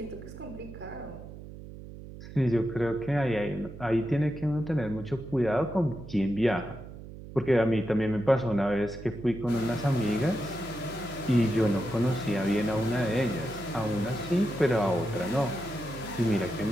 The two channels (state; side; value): noise; right; hum, 14 dB below the sound